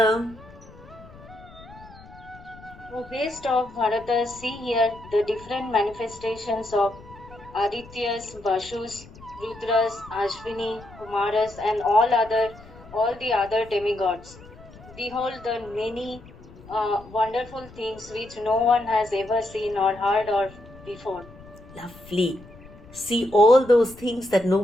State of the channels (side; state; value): left; noise; rumble, 20 dB below the sound